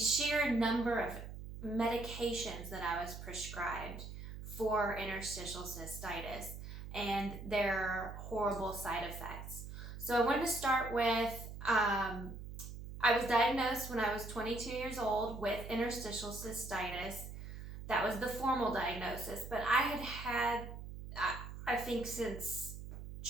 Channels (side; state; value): right; noise; hum, 10 dB below the sound